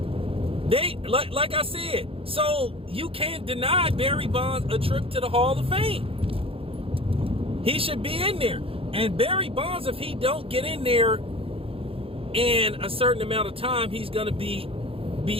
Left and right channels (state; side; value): late; left; 0.27 ms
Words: They, like I said, so you can't deny Barry Bonds a trip to the Hall of Fame. He should be in there. And Barry Bonds, if he don't get in there in a certain amount of time, he's going to be